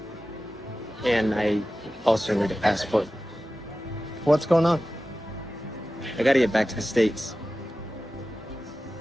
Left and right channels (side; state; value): both; normal; correlation 0.94